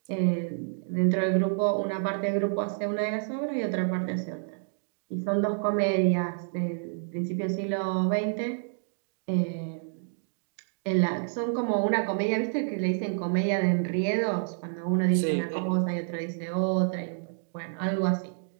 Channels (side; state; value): left; silent; digital silence